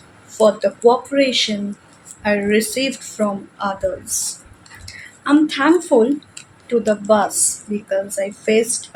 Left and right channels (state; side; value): identical; both; correlation 1.00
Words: for the cooperation I received from others. I'm thankful to the bus because I faced